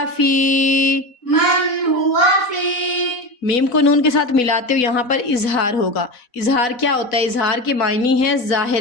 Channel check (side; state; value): right; late; 4.1 ms